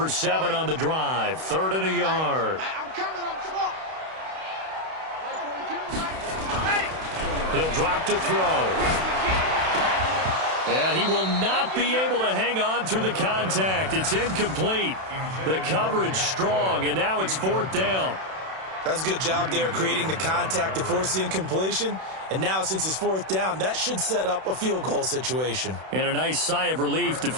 7 on the drive. 3rd and a yard. I'm coming. Come on. He'll drop to throw. And he will not be able to hang on through the contact. It's incomplete. The coverage strong, and now it's 4th down. That's a good job there creating the contact to force the incompletion. And now since it's 4th down, that should set up a field goal situation. And a nice sigh of relief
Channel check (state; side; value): late; left; 32 ms